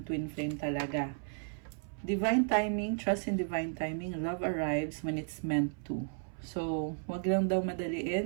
twin flame talaga. Divine timing. Trust in divine timing. Love arrives when it's meant to. So, wag lang daw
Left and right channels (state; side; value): silent; left; 55 dB below the other